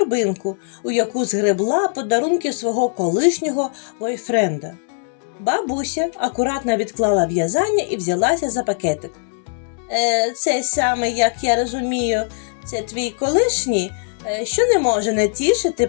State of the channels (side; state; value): right; silent; digital silence